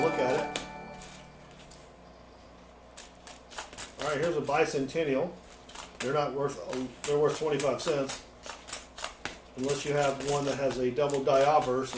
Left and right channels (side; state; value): both; identical; correlation 1.00